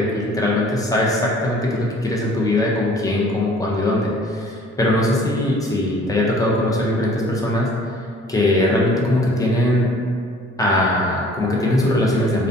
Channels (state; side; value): normal; both; correlation 0.53